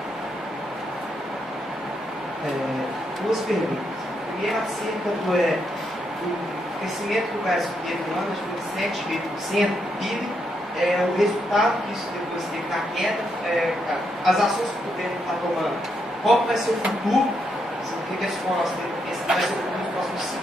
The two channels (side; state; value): both; normal; correlation 0.79